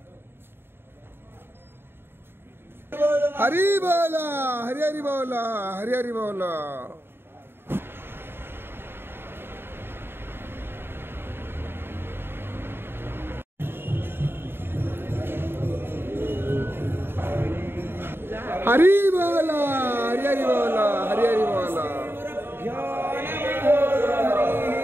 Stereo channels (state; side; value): late; left; 0.11 ms